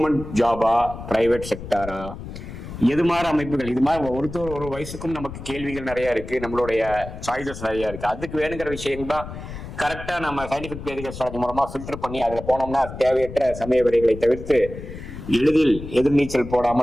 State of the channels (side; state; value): left; noise; rumble, 11 dB below the sound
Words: ஜாபா பிரைவேட் செக்டாரா, எது மாதிரி அமைப்புகள், இது மாதிரி ஒரு வயசுக்கும் நமக்கு கேள்விகள் நிறைய இருக்கு, நம்மளுடைய சாய்ஸஸ் நிறைய இருக்கு. அதுக்கு வேணுங்கிற விஷயம் தான் கரெக்டா நம்ம சயின்டிபிக் வேதிக் அஸ்ட்ராலஜி மூலமா ஃபில்டர் பண்ணி அதுல போனோம்னா தேவையற்ற சமய விடைகளை தவிர்த்து எளிதில் எதிர்நீச்சல்